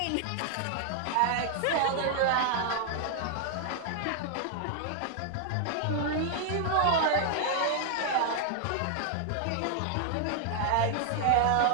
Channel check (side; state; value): both; different; correlation 0.00